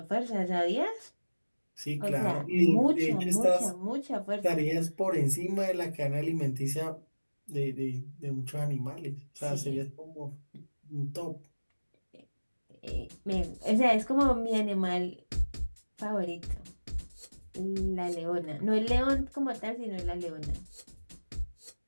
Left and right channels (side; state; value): both; inverted; correlation -1.00